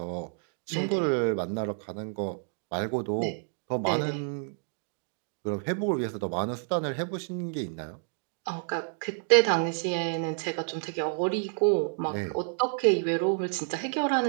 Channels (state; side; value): silent; left; 58 dB below the other